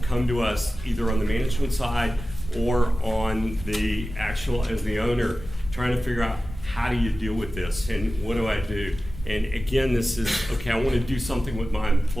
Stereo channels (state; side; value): normal; both; correlation 0.95